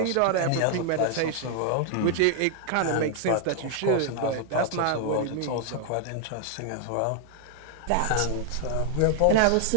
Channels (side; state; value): both; different; correlation 0.00